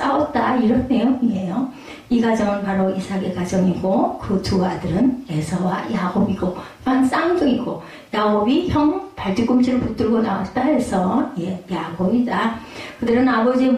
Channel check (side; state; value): both; identical; correlation 1.00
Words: 이런 내용이에요. 이 가정은 바로 이삭의 가정이고 그 두 아들은 에서와 야곱이고 쌍둥이고 야곱이 형 발뒤꿈치를 붙들고 나왔다 해서 야곱이다. 그들은 아버지의